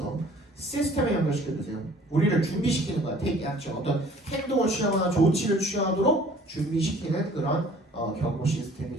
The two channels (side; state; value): both; normal; correlation 0.52